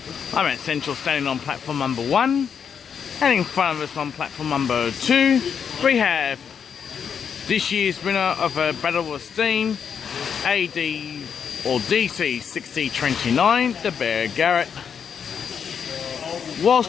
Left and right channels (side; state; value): right; quieter; 7.2 dB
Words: I'm at Central, standing on platform number 1, and in front of us on platform number 2 we have this year's winner of a Battle of Steam AD or DC 6029, the Bear Garrett.